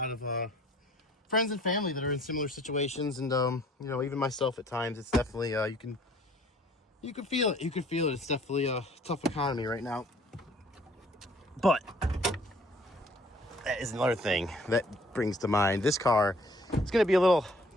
of friends and family that are in similar situations, and you know, even myself at times. It's definitely you can feel it. It's definitely a tough economy right now. But that is another thing that brings to mind this car. It's going to be a little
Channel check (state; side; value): normal; both; correlation 0.56